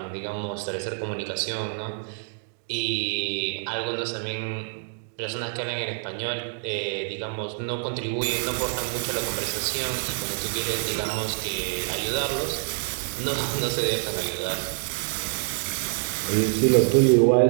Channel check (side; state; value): left; silent; digital silence